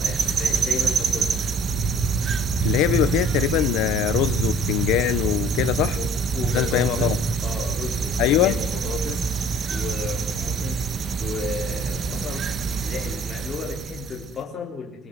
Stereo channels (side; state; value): both; normal; correlation 0.52